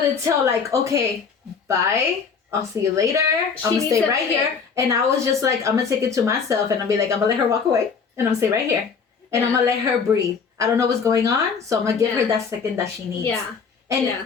tell like, okay, bye. I'll see you later. I'm gonna stay right here. And I was just like, I'm gonna take it to myself and I'll be like, I'm gonna let her walk away and I'm gonna stay right here. And I'm gonna let her breathe. I don't know what's going on, so I'm gonna give her that second that she needs. Yeah.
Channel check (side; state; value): right; quieter; 5.8 dB